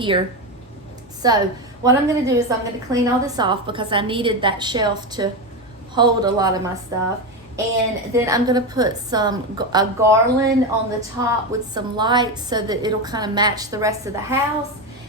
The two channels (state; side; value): normal; both; correlation 0.15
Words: So what I'm going to do is I'm going to clean all this off because I needed that shelf to hold a lot of my stuff. And then I'm going to put a garland on the top with some lights so that it'll kind of match the rest of the house.